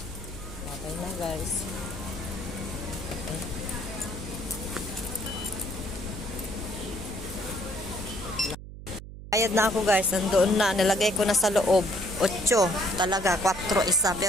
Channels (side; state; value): right; noise; hum, 13 dB below the sound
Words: okay na guys. Okay. Bayad na ako guys. Nandoon na. Nilagay ko na sa loob. 8 talaga. 4 isa.